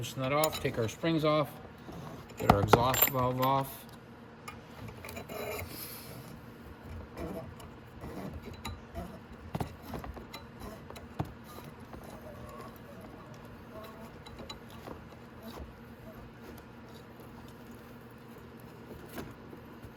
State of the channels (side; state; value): both; identical; correlation 1.00